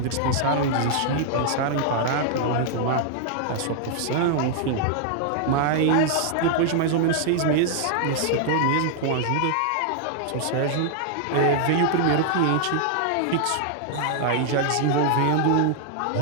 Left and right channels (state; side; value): different; both; correlation -0.01